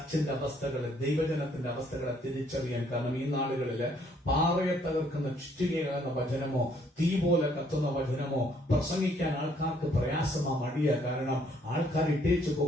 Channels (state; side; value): normal; both; correlation 0.66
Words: അവസ്ഥകളെ, ദൈവജനത്തിന്റെ അവസ്ഥകളെ തിരിച്ചറിയാൻ. കാരണം ഈ നാടുകളില് പാറയെ തകർക്കുന്ന ചുറ്റികയാകുന്ന വചനമോ തീ പോലെ കത്തുന്ന വചനമോ പ്രസംഗിക്കാൻ ആൾക്കാർക്ക് പ്രയാസമാ, മടിയ. കാരണം ആൾക്കാർ ഇട്ടേച്ചു